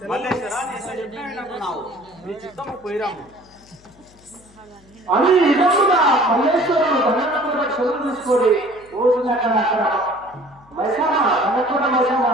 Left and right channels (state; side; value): noise; left; hum, 28 dB below the sound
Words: మల్లేశ్వర, నీ ఎంత చెప్పినా వినకున్నావు, నీ చిత్తము పోయిరాము. అని నిజంగా మల్లేశ్వరుడు దండనప్పుడు చదువు తీసుకొని రోజులక్కడ అక్కడ మైసమ్మ దండకూడ మైసమ్మ